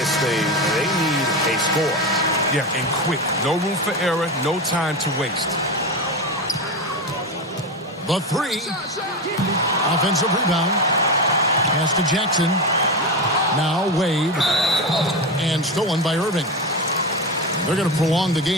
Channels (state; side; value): normal; both; correlation 0.18